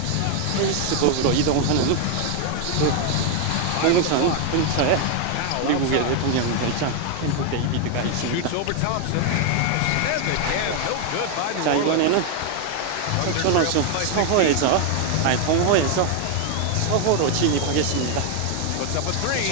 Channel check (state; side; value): different; both; correlation 0.01